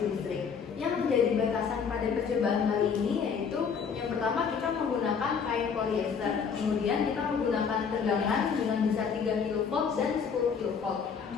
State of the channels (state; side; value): quieter; right; 6.3 dB